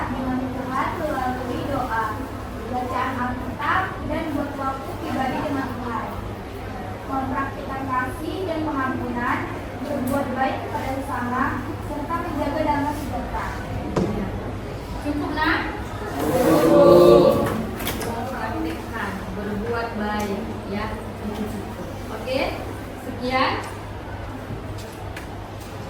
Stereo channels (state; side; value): identical; both; correlation 1.00